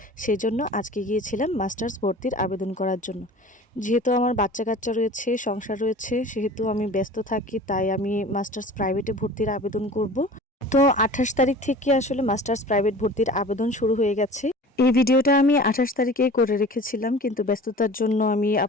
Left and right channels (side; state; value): both; normal; correlation 0.41